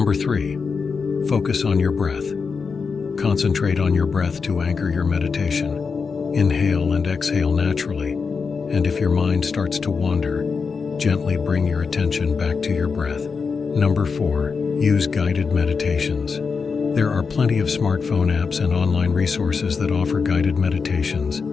3, focus on your breath. Concentrate on your breath to anchor your meditation. Inhale and exhale naturally, and if your mind starts to wander, gently bring your attention back to your breath. Number 4, use guided meditations. There are plenty of smartphone apps and online resources that offer guided meditations.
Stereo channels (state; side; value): quieter; right; 5.3 dB